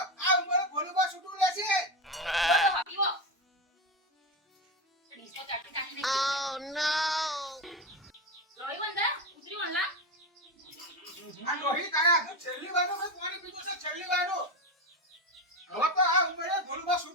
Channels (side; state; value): both; normal; correlation 0.16